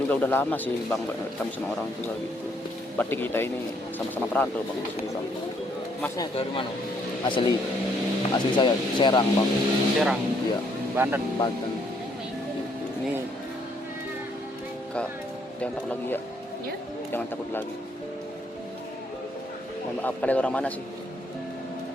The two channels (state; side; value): normal; both; correlation 0.69